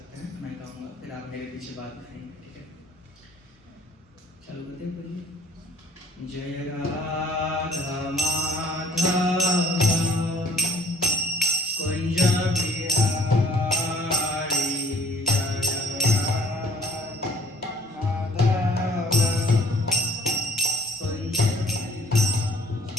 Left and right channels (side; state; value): both; normal; correlation 0.58